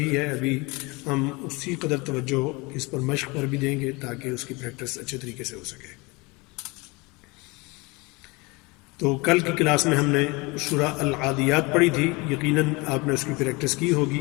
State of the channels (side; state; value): right; quieter; 25.8 dB